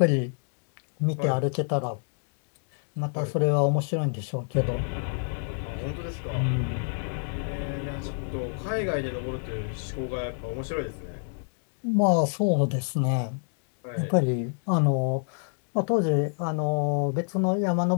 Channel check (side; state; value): right; silent; digital silence